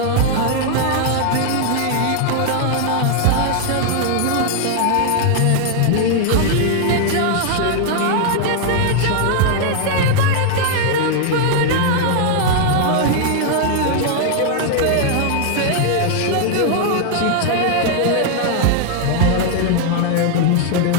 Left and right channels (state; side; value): different; both; correlation 0.00